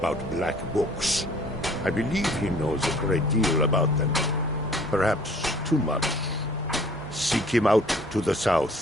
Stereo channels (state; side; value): normal; both; correlation 0.54